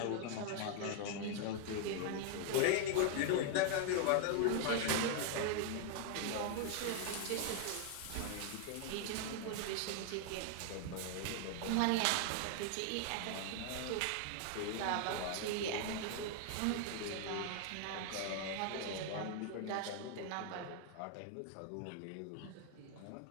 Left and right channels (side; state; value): both; different; correlation 0.00